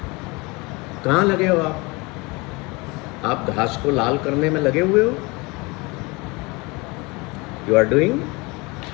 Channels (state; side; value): quieter; right; 26.1 dB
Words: कहाँ लगे हो आप? आप घास को लाल करने में लगे हुए हो? यू आर डूइंग,